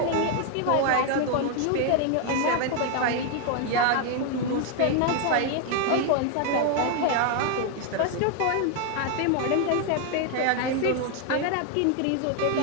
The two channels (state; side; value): different; both; correlation 0.01